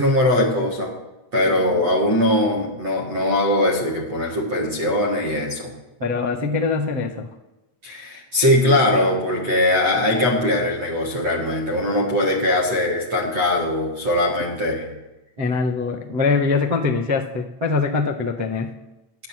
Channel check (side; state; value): left; late; 8.2 ms